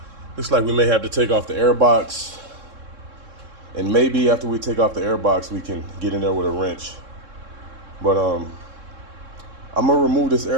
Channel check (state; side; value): late; left; 3.7 ms